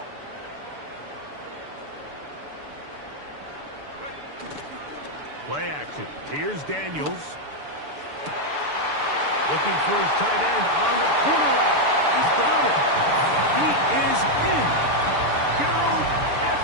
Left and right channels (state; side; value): late; left; 6.9 ms